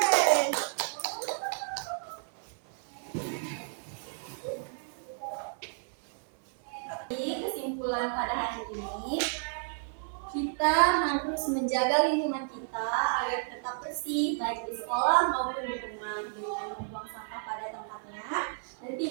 Jadi, kesimpulan pada hari ini, kita harus menjaga lingkungan kita agar tetap bersih, baik di sekolah maupun di rumah, dengan membuang sampah pada tempatnya dan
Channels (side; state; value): left; silent; 57 dB below the other